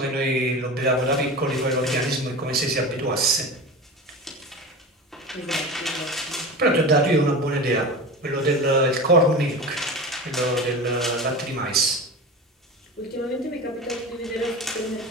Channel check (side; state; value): both; normal; correlation 0.30